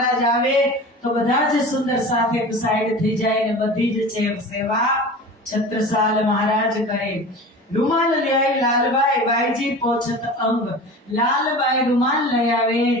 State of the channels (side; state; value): both; normal; correlation 0.35